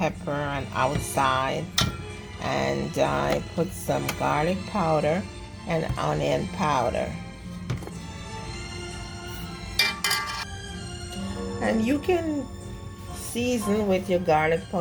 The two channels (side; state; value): both; identical; correlation 1.00